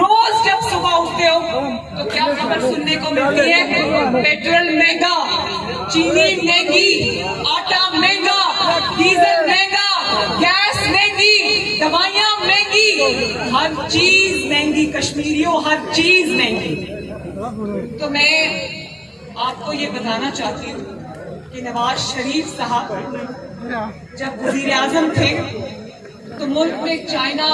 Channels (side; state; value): both; identical; correlation 1.00